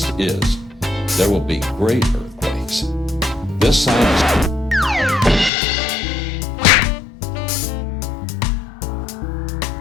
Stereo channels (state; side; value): drops out; right; at 5.5 s